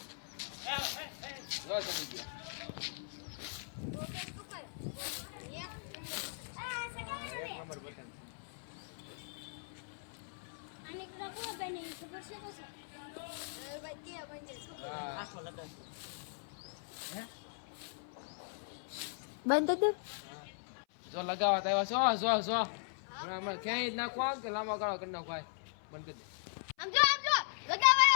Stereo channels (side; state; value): right; silent; 52 dB below the other